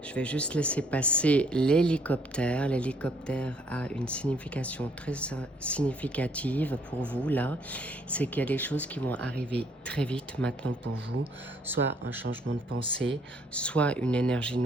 Je vais juste laisser passer l'hélicoptère. L'hélicoptère a une signification très significative pour vous là. C'est qu'il y a des choses qui vont arriver très vite maintenant pour vous. Soit un changement de pensée, soit une énergie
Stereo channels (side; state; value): both; normal; correlation 0.65